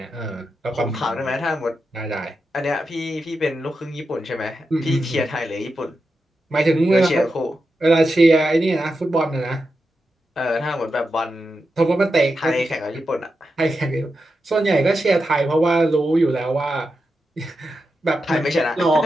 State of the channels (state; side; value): normal; both; correlation 0.88